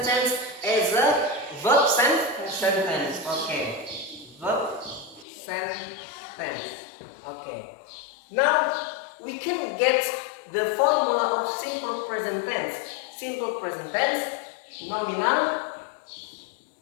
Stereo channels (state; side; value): drops out; right; at 5.2 s